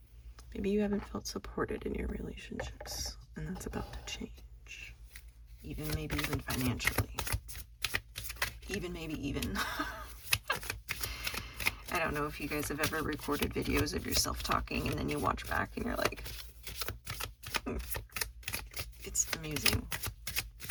Maybe you haven't felt supported in your relationships, and that's about to change. Maybe even financially. Maybe. I don't know if you guys have ever recorded videos of yourself talking and then you watch back and you're like, it's amusing.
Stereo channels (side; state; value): both; identical; correlation 1.00